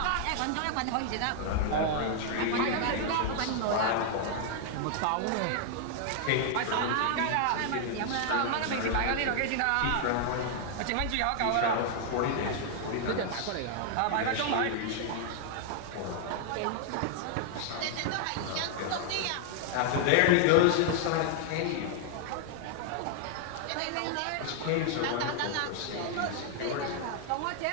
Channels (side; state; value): both; different; correlation 0.00